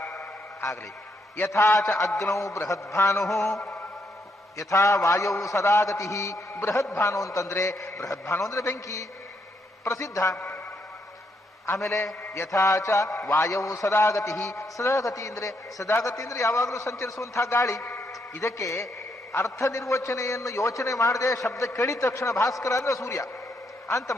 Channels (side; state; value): both; normal; correlation 0.77